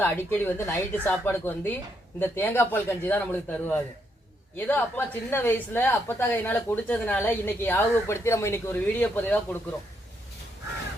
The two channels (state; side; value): normal; both; correlation 0.76